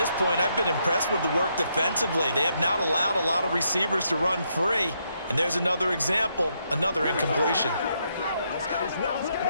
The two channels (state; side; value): inverted; both; correlation -0.77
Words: point, I've been impressed with the work defensively. They have not allowed a lot of receivers to run free. And there's another example, another incompletion.